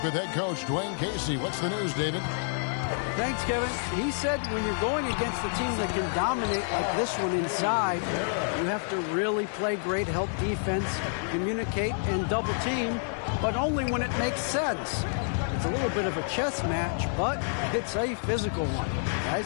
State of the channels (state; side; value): silent; right; digital silence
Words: with head coach Dwayne Casey. What's the news, David? Thanks, Kevin. He said when you're going against a team that can dominate like this one inside, you have to really play great help defense, communicate, and double team, but only when it makes sense. It's a little bit of a chess match, but it's a physical one,